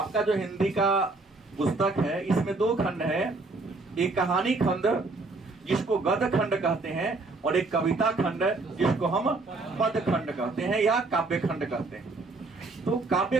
जो हिंदी का पुस्तक है इसमें 2 खंड है, एक कहानी खंड जिसको गद्य खंड कहते हैं और एक कविता खंड जिसको हम पद खंड कहते हैं या काव्य खंड कहते हैं। तो काव्य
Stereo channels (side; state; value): left; quieter; 3.5 dB